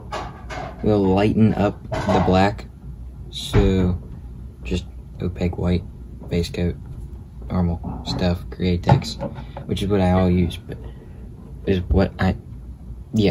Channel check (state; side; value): identical; both; correlation 1.00